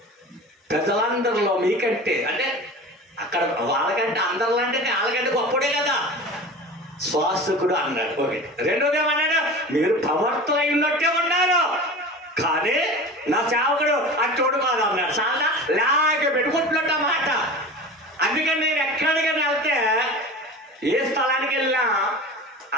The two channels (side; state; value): both; normal; correlation 0.34